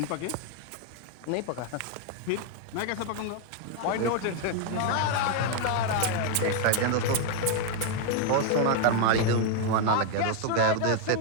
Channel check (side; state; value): both; different; correlation 0.00